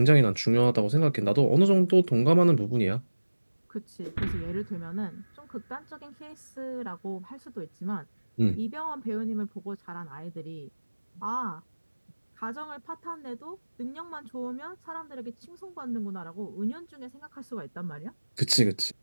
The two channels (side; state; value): both; inverted; correlation -1.00